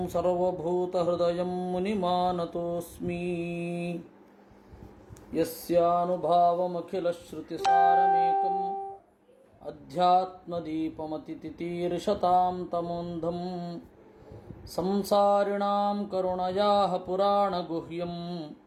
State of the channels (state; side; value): identical; both; correlation 1.00